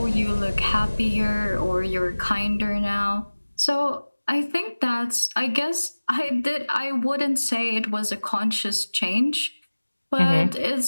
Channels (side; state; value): both; inverted; correlation -1.00